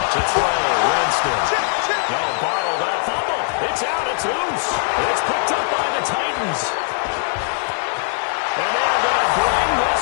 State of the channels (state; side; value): silent; right; 66 dB below the other